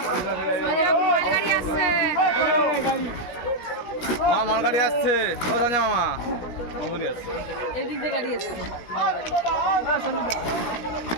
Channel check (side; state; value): right; late; 17 ms